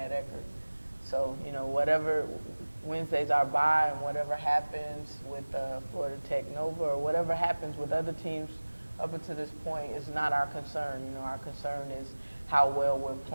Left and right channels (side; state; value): both; inverted; correlation -1.00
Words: at Eckerd. So, you know, whatever Wednesday's our bye, and whatever happens with Florida Tech Nova, or whatever happens with other teams up until this point is not our concern. You know, our concern is how well we're